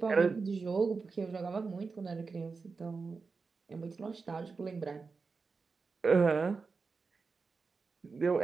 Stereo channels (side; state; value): left; quieter; 4.5 dB